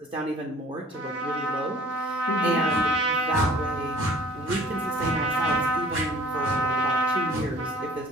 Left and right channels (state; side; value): normal; both; correlation 0.51